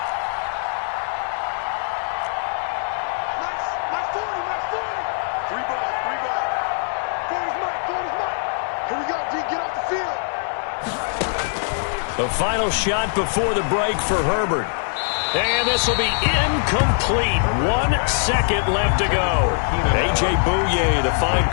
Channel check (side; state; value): right; silent; digital silence